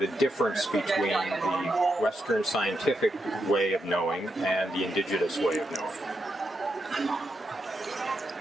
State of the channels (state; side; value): normal; both; correlation 0.84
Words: difference between the Western scientific way of knowing and the indigenous way of knowing?